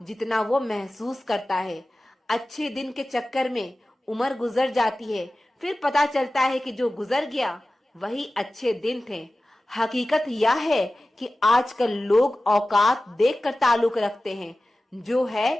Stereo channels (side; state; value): both; normal; correlation 0.96